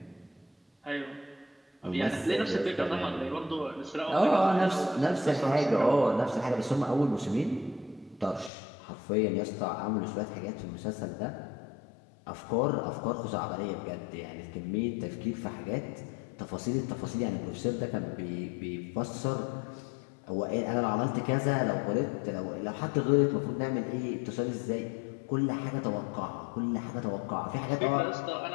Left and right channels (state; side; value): drops out; right; at 8.5 s